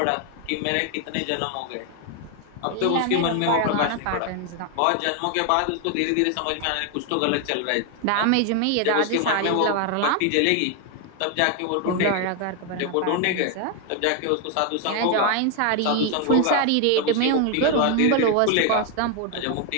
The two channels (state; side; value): different; both; correlation 0.01